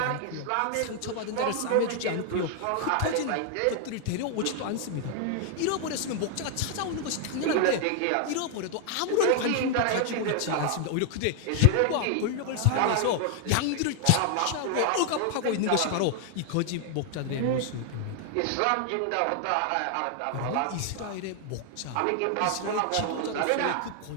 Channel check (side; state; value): both; different; correlation 0.00